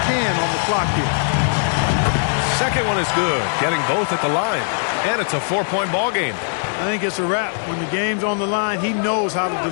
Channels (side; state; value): right; silent; digital silence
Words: can on the clock here. Second one is good, getting both at the line. And it's a 4-point ball game. I think it's a wrap. When the game's on the line, he knows how to